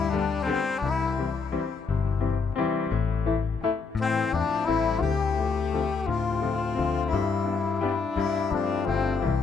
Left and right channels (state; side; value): quieter; right; 4.6 dB